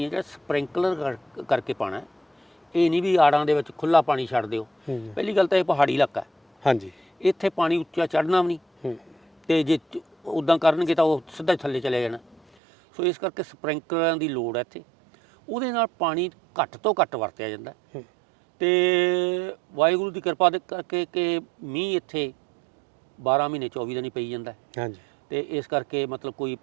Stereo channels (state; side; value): drops out; left; at 12.4 s